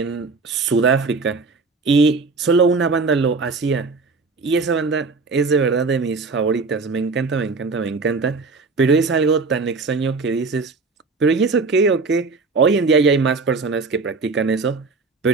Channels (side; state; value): left; quieter; 4.1 dB